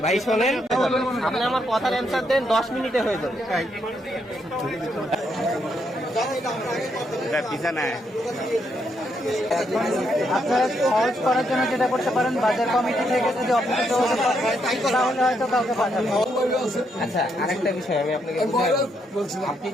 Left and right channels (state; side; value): normal; both; correlation 0.77